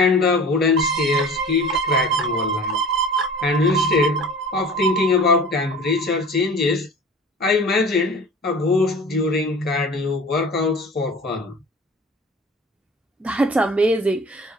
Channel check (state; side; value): normal; both; correlation 0.41